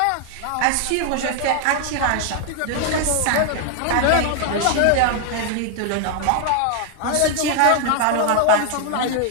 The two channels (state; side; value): different; both; correlation 0.00